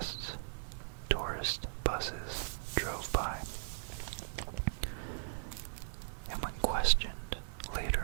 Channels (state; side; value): silent; left; digital silence